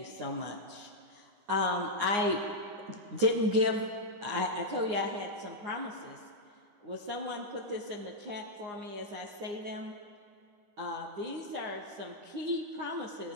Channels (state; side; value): late; left; 9.7 ms